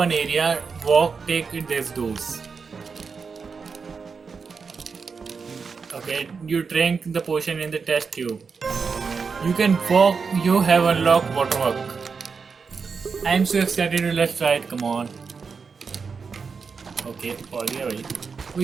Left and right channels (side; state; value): left; quieter; 5.3 dB